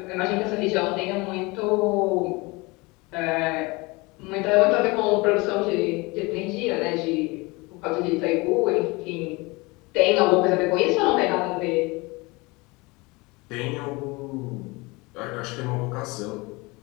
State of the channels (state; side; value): quieter; right; 24.9 dB